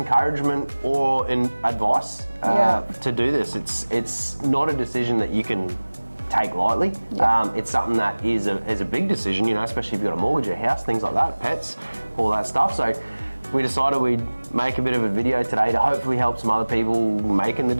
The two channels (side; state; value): both; inverted; correlation -1.00